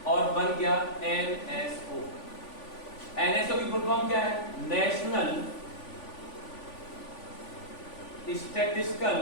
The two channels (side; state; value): right; late; 3.5 ms